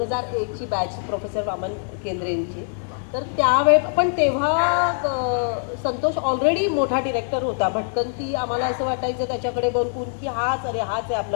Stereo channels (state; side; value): silent; right; 63 dB below the other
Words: बॅच प्रोफेसर वामन केंद्रेंची. तर त्यावेळे पण तेव्हा संतोष ऑलरेडी मोठा डिरेक्टर होता. भटकंती आम्हाला असं वाटायचं त्याच्याकडे बघून की हाच आहे आपलं